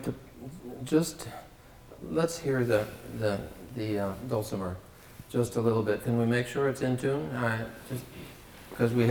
to just, let's hear the dulcimer just a little bit. Can we make sure it's in tune? Just because we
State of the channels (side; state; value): both; identical; correlation 1.00